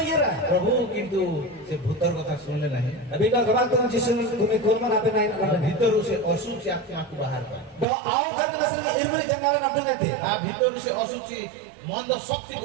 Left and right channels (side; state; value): left; drops out; at 7.9 s